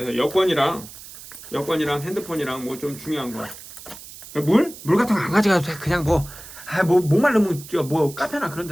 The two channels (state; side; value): noise; right; hiss, 16 dB below the sound